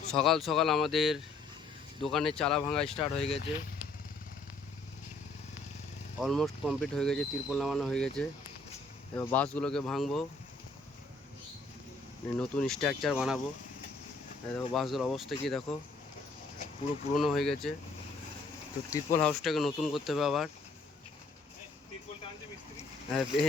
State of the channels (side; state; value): right; quieter; 3.5 dB